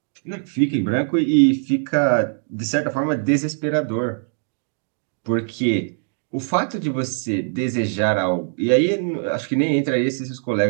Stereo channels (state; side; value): silent; left; 61 dB below the other